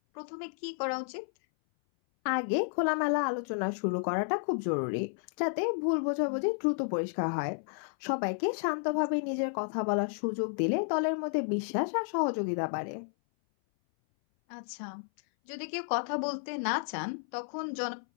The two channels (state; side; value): silent; right; 57 dB below the other